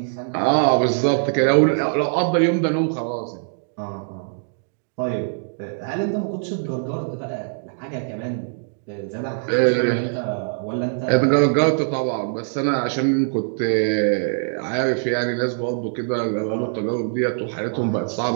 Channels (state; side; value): silent; left; digital silence